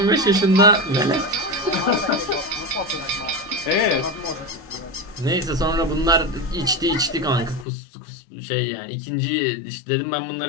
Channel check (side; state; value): right; drops out; at 7.7 s